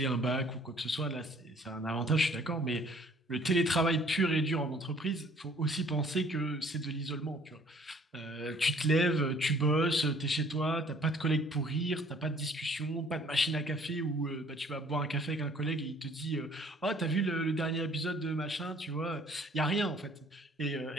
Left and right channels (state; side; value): normal; both; correlation 0.57